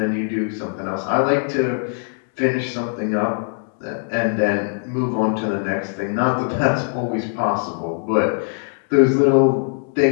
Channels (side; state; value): right; silent; digital silence